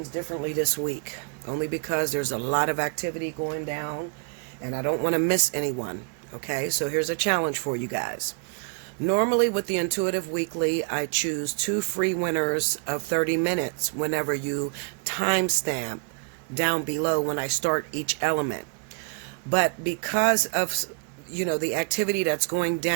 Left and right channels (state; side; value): quieter; left; 38.5 dB